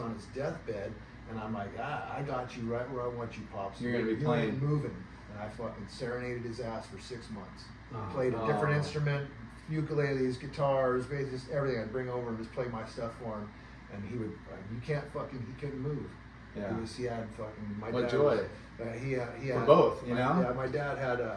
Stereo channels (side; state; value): both; identical; correlation 1.00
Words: his deathbed. And I'm like, I got you right where I want you, Pops. You're gonna be You playing. ain't moving. And I fucking serenaded his ass for 6 months. Oh. Played a different Oh. instrument, ukuleles, guitars, basses, just everything. I'd bring over and just play my stuff for him. And he would, he couldn't move. yeah. He had fucking, my What dad joy. was- he For had both, you know? Yeah, my dad had